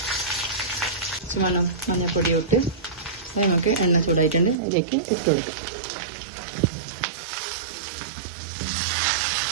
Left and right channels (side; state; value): left; drops out; at 4.5 s